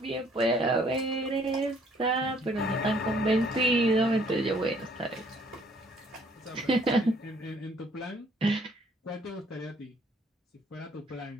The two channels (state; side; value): normal; both; correlation 0.62